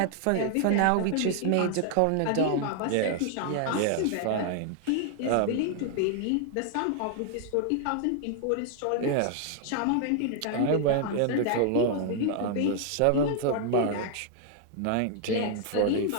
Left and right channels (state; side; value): different; both; correlation 0.00